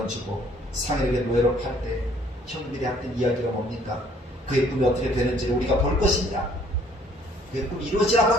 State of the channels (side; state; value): both; normal; correlation 0.60